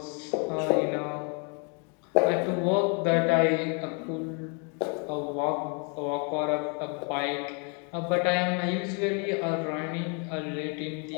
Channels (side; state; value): right; quieter; 37.3 dB